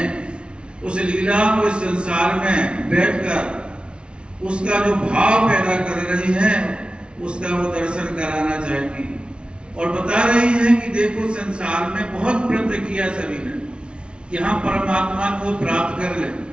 उस लीला को इस संसार में बैठकर उसका जो भाव पैदा कर रही है उसका वो दर्शन कराना चाहती है। और बता रही है कि देखो संसार में बहुत प्रयत्न किया सभी ने कि हम परमात्मा को प्राप्त कर लें।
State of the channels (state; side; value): late; left; 0.057 ms